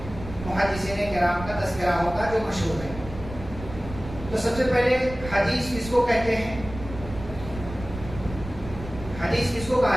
محدثین کرام کا تذکرہ ہوگا جو مشہور ہے۔ تو سب سے پہلے حدیث کس کو کہتے ہیں؟ حدیث کس کو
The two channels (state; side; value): noise; right; rumble, 12 dB below the sound